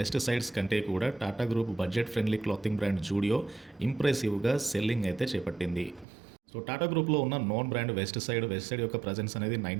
Westsides కంటే కూడా Tata group budget friendly clothing brand Zudio ఇంప్రెసివ్గా సెల్లింగ్ అయితే చేపట్టింది. సో టాటా గ్రూప్లో ఉన్న నోన్ బ్రాండ్ వెస్ట్ సైడ్ యొక్క ప్రజెన్స్ అనేది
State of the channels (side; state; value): left; drops out; at 6.1 s